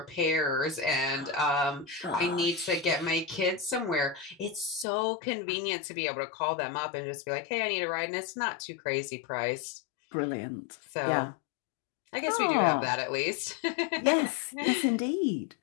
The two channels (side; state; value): right; drops out; at 4.9 s